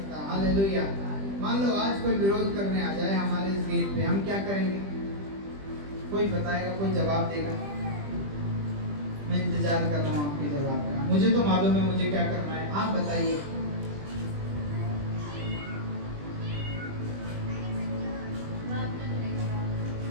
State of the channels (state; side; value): late; left; 20 ms